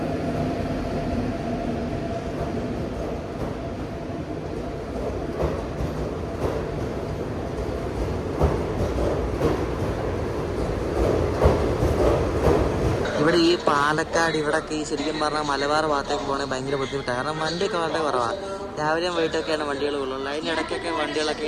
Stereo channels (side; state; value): both; identical; correlation 1.00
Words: ഇവിടെ ഈ പാലക്കാട് ഇവിടെയൊക്കെ ഈ ശരിക്കും പറഞ്ഞാൽ മലബാർ ഭാഗത്തേക്ക് പോകണമെങ്കിൽ ഭയങ്കര ബുദ്ധിമുട്ടാണ്. കാരണം വണ്ടിയൊക്കെ വളരെ കുറവാണ്. രാവിലെയും വൈകിട്ടൊക്കെയാണ് വണ്ടികൾ ഉള്ളൂ. അതിൻ്റെ ഇടയ്ക്കൊക്കെ വണ്ടികളൊക്കെ